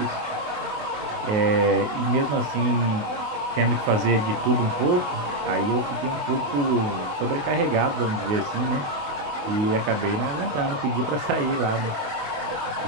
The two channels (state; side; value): late; left; 28 ms